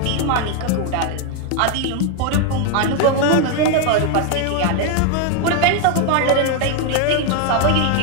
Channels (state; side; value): different; both; correlation 0.01